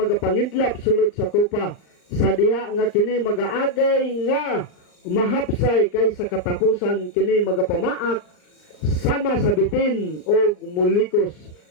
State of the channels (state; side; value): late; right; 39 ms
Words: sulod sa kupa, sa diha nga kini magaagay nga mahapsay kay sa katapusan kini magapamaak sama sa bitin o mulikos